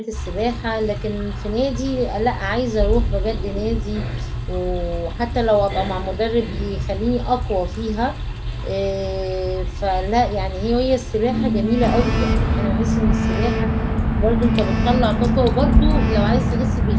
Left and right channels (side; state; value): both; identical; correlation 1.00